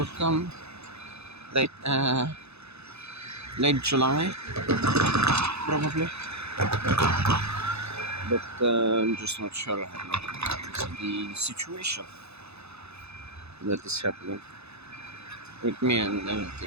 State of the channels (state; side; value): late; left; 0.79 ms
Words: come late July, probably. But I'm just not sure about the situation that is happening with me and